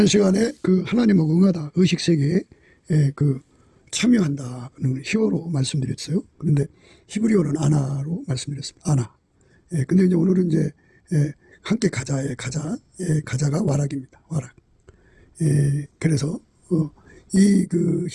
시간에 그 하나님하고 응하다 의식세계에 참여한다는 히어로 말씀드렸어요. 그런데 히브리어는 아나로 말씀드렸습니다. 아나. 근데 이제 오늘은 이제 함께 가자의 가자가 와락입니다. 와락. 그래서 이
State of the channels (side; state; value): both; identical; correlation 1.00